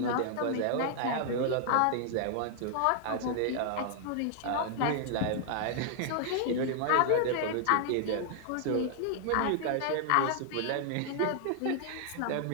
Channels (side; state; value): both; different; correlation -0.01